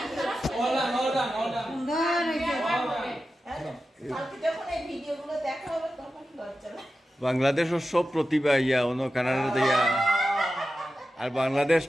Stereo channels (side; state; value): both; normal; correlation 0.92